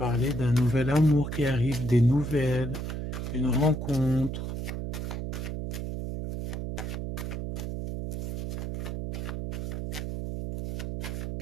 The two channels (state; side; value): noise; right; hum, 4 dB below the sound